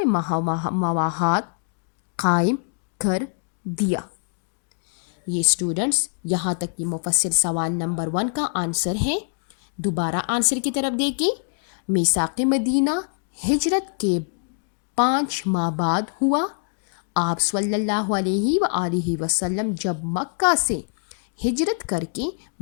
مواہات قائم کر دیا۔ یہ اسٹوڈنٹس یہاں تک یہ مفصل سوال نمبر 1 کا آنسر ہے۔ دوبارہ آنسر کی طرف دیکھیں، میثاق مدینہ ہجرت کے 5 ماہ بعد ہوا۔ آپ صلی اللہ علیہ وآلہ وسلم جب مکہ سے ہجرت کر کے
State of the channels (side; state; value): right; silent; 63 dB below the other